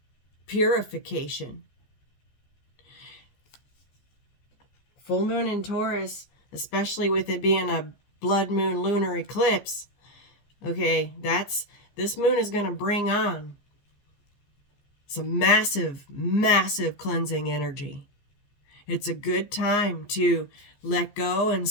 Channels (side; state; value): right; late; 14 ms